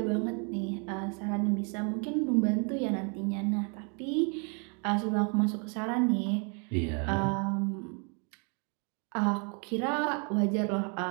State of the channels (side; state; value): left; quieter; 36.9 dB